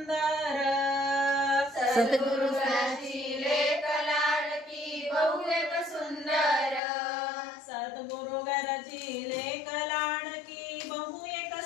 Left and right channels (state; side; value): drops out; right; at 6.8 s